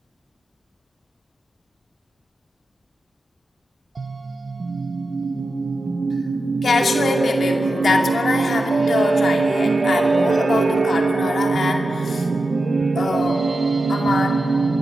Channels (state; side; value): normal; both; correlation 0.90